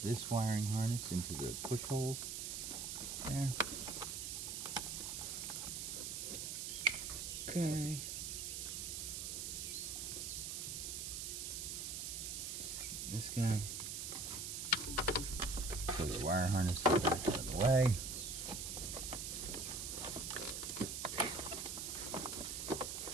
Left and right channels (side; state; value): right; noise; hiss, 4 dB below the sound